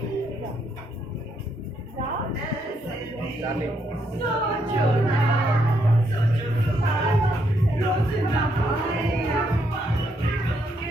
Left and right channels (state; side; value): normal; both; correlation 0.76